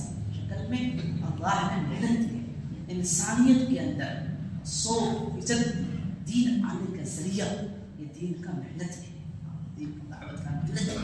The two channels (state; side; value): identical; both; correlation 1.00